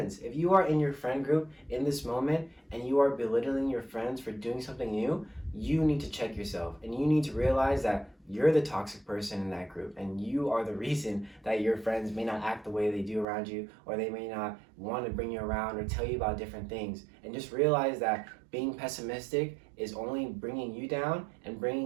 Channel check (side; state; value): left; drops out; at 13.2 s